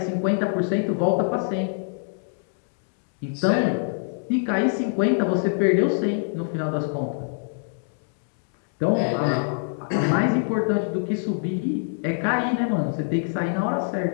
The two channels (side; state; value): right; silent; digital silence